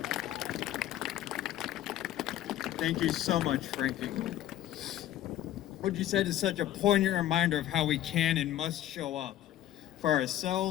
Thank you so much, Frankie. What you said is such a poignant reminder of how we can and must show up for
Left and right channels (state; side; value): quieter; right; 12.9 dB